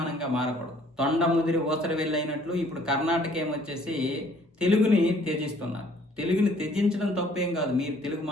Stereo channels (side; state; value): both; normal; correlation 0.59